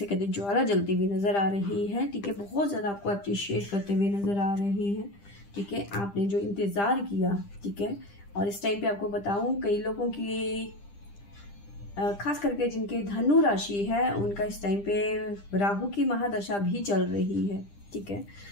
कहते हैं ज्वाला जलती हुई नज़र आ रही है, ठीक है। बहुत ज़्यादा आपको अप्रिशिएट करते हुए नज़र आ रहे हैं, ठीक है। आपने जो इंतज़ार किया, ठीक है। और इस टाइम पे आपको बताऊं, कई लोगों की खास करके जिनके धनु राशि है, उनका इस टाइम पे राहु की महादशा भी चल रही है, ठीक है।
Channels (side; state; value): right; late; 10 ms